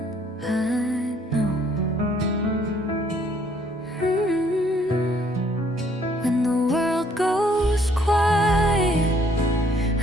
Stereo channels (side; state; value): both; normal; correlation 0.64